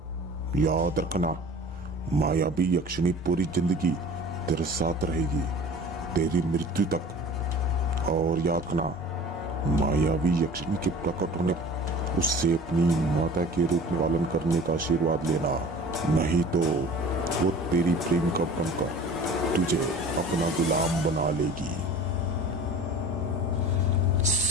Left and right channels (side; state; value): both; normal; correlation 0.42